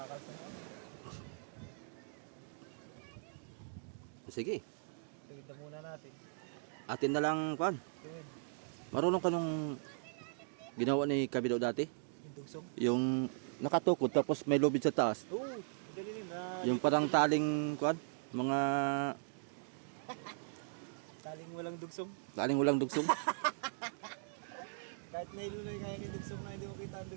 na. Sige, Tuwid na muna natin. atin na lang kuan. Tuwid. Marunong ka nung ginawa ni Kabido dati? Yung dugsong. Yung nakatukod tapos may lubid sa taas. Oo, madali rin. Yung parang taling kuan, mga Taling walang dugsong. taling walang dugsong. Kahit nailuloy kaya ni dugsong na hindi mo kita ang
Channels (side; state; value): left; silent; digital silence